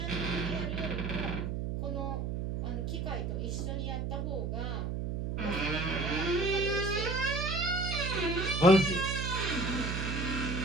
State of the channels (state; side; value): noise; right; hum, 2 dB below the sound